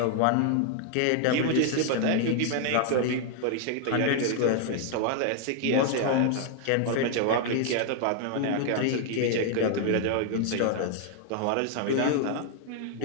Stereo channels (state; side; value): different; both; correlation 0.00